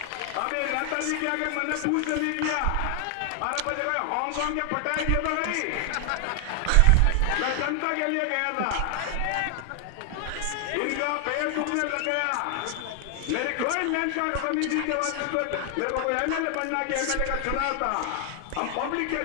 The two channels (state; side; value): different; both; correlation 0.00